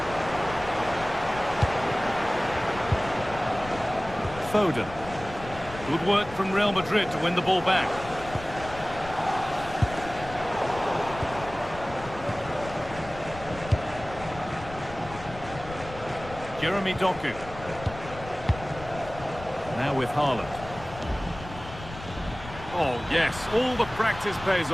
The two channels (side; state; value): left; noise; rumble, 14 dB below the sound